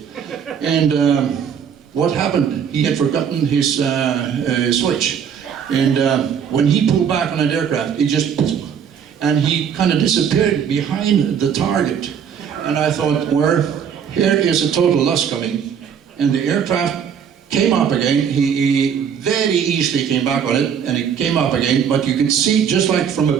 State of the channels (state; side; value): quieter; left; 7.8 dB